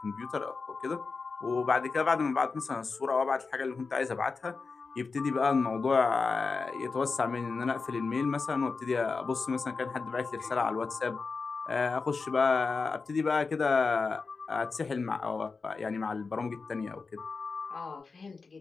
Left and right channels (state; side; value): quieter; right; 4.5 dB